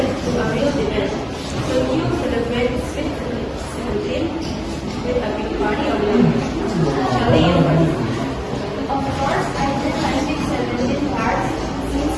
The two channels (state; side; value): identical; both; correlation 1.00